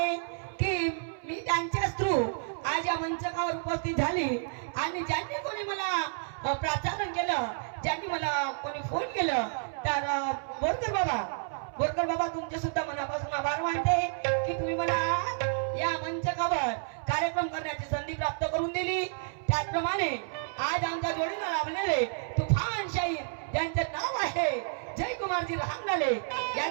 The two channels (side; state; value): left; silent; 58 dB below the other